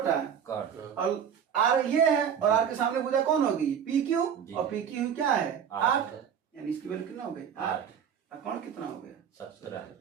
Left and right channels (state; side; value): quieter; left; 8.1 dB